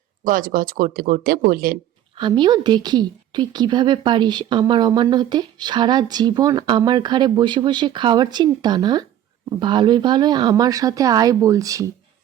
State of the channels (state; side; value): quieter; left; 11.6 dB